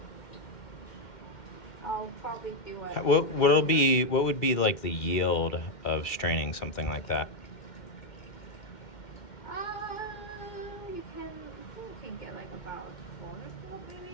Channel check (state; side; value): late; right; 2.3 ms